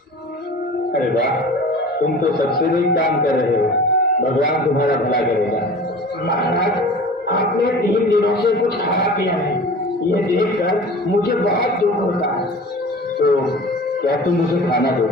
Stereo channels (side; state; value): both; normal; correlation 0.39